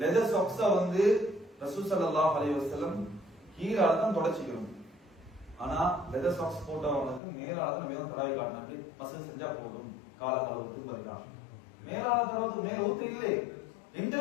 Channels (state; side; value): drops out; right; at 7.2 s